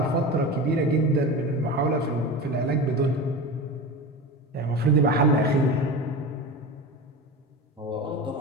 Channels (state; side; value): normal; both; correlation 0.27